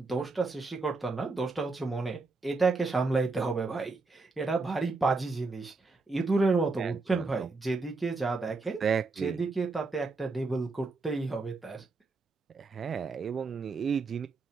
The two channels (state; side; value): quieter; left; 3.9 dB